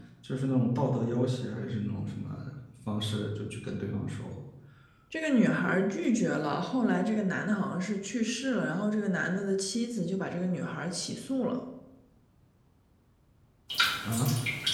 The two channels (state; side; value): identical; both; correlation 1.00